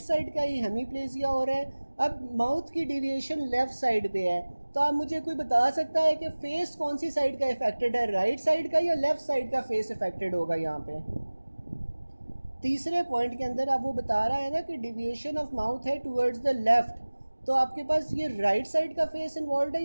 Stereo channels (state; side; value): inverted; both; correlation -1.00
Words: साइड का ही हेमीप्लेजिया हो रहा है। अब माउथ की डिविएशन लेफ्ट साइड पे है, तो आप मुझे कोई बता सकता है कि फेस कौन सी साइड का इफेक्टेड है, राइट साइड का या लेफ्ट साइड का फेस इफेक्टेड होगा? यहाँ पे तीसरे पॉइंट के अंदर अब वो बता रहा है ना कि डिविएशन ऑफ माउथ है टूवर्ड्स द लेफ्ट, तो आपके पास ये राइट साइड का फेस इन्वॉल्व है